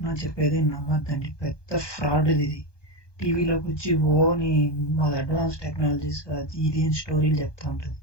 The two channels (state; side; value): late; right; 1.2 ms